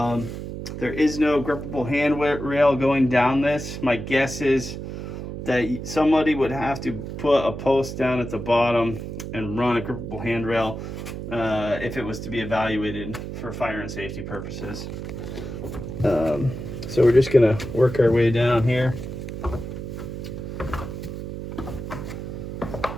is no grippable handrail going down this. My guess is that somebody would have to put a post down at the bottom and run a grippable handrail if it was to be evaluated for fire and safety purposes. So we're just gonna work our way down here. All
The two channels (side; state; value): right; noise; hum, 7 dB below the sound